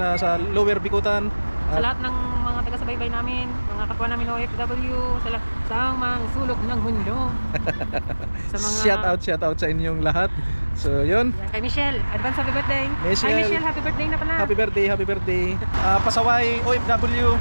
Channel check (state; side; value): inverted; both; correlation -1.00